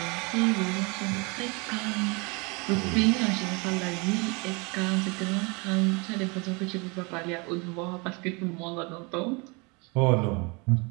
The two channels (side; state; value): left; quieter; 29.4 dB